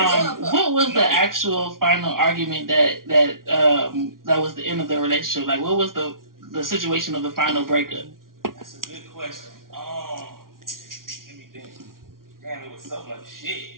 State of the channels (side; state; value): left; late; 0.92 ms